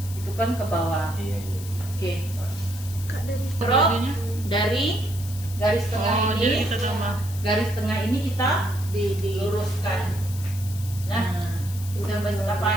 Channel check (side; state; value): left; noise; hiss, 14 dB below the sound